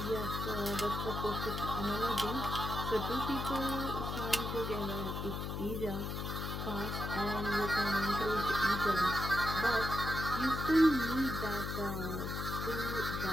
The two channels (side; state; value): left; noise; hum, 4 dB below the sound